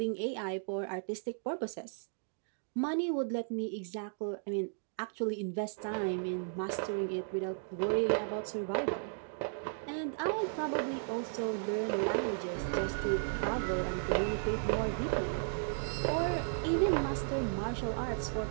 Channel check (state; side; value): silent; left; digital silence